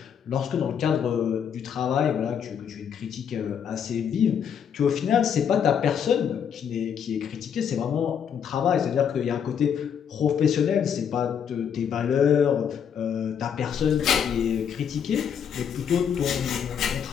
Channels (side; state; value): right; quieter; 7.9 dB